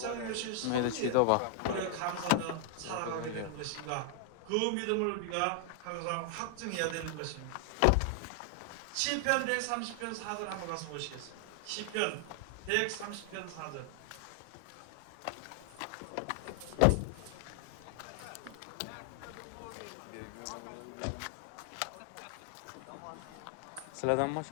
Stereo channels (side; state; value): both; different; correlation 0.00